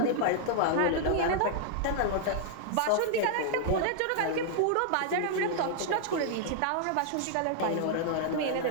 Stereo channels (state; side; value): different; both; correlation -0.01